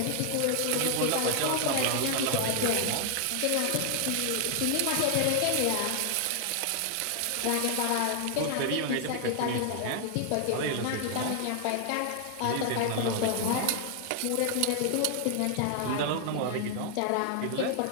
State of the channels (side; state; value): both; different; correlation 0.00